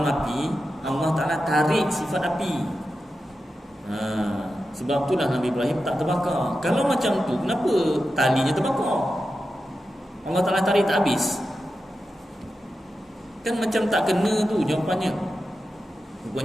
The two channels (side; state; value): both; normal; correlation 0.91